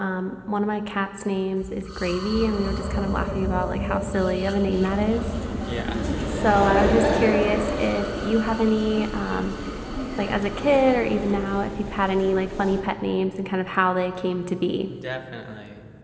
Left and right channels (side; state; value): both; identical; correlation 1.00